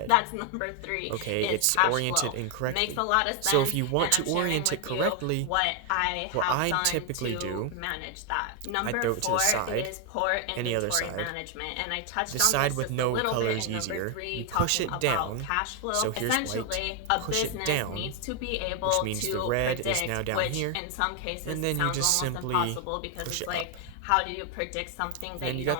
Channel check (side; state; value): both; different; correlation 0.01